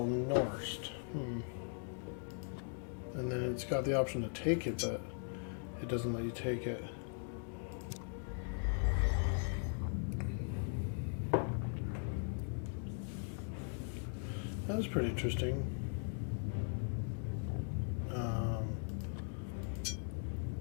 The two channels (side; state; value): right; silent; 51 dB below the other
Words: Norst. And then it's got the option to take it, but it doesn't let you take it. That was pretty interesting.